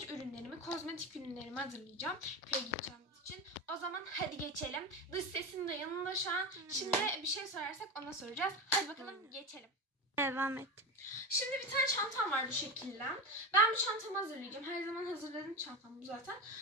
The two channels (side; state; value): both; normal; correlation 0.21